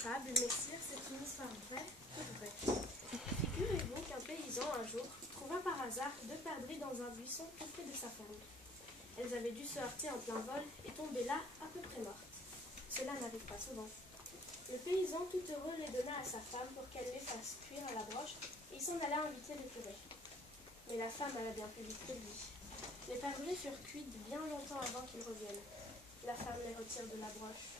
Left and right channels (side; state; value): both; normal; correlation 0.56